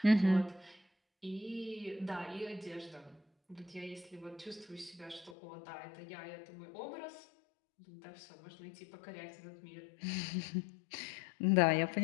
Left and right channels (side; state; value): right; drops out; at 5.4 s